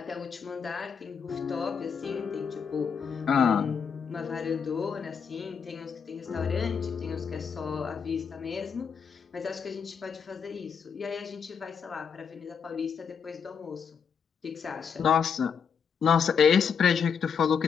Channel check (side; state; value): right; quieter; 6.6 dB